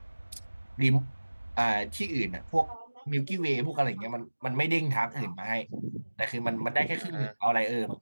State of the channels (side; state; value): both; inverted; correlation -1.00